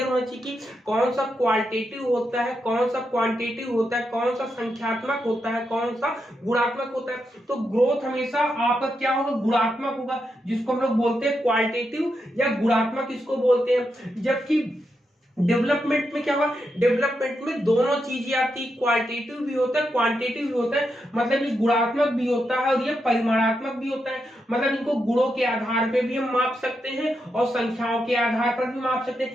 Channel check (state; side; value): normal; both; correlation 0.84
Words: होना चाहिए कि कौन सा क्वालिटेटिव होता है, कौन सा क्वांटिटेटिव होता है, कौन सा संख्यात्मक होता है, कौन सा गुणात्मक होता है। तो ग्रोथ हमेशा आपका क्या होगा? गुणात्मक होगा, जिसको हम लोग बोलते हैं क्वालिटेटिव या गुणात्मक इसको बोलते हैं। जबकि डेवलपमेंट में क्या हुआ? डेवलपमेंट में दोनों चीजें आती, क्वालिटेटिव भी होता है, क्वांटिटेटिव भी होता है। मतलब ये गुणात्मक भी होता है और ये परिमाणात्मक भी होता है। मतलब इनको गुणों के आधार पे भी हम माप सकते हैं और संख्याओं के आधार पर भी माप सकते